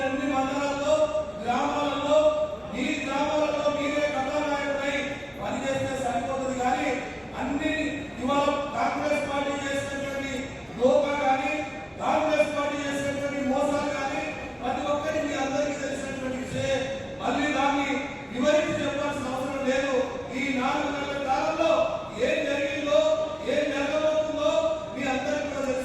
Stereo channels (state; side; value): identical; both; correlation 1.00